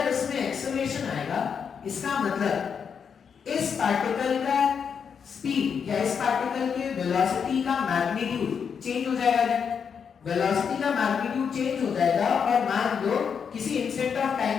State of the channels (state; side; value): quieter; right; 6.8 dB